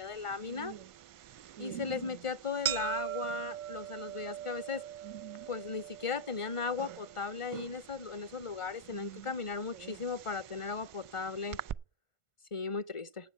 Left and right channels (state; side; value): late; right; 1.5 ms